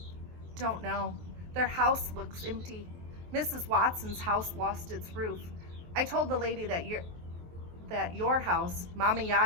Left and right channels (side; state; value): left; late; 23 ms